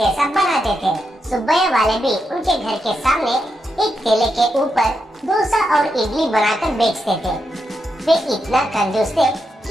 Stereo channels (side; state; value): both; normal; correlation 0.84